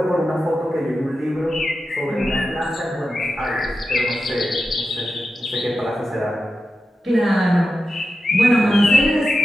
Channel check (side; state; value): both; normal; correlation 0.91